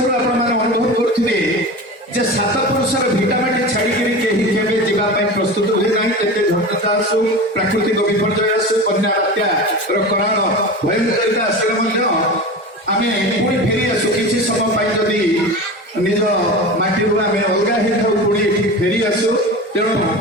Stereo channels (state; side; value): normal; both; correlation 0.30